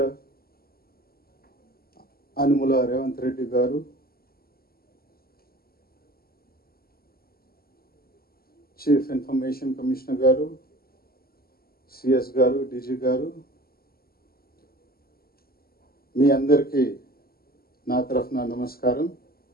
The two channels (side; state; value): right; late; 0.44 ms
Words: Anumula Revanth Reddy Garu, Chief Information Commissioner Garu, CS Garu, DG Garu, మీ అందరికీ నా తరఫున నమస్కారం.